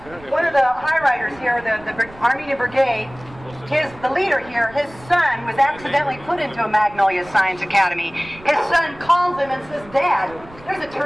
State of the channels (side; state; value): right; noise; rumble, 21 dB below the sound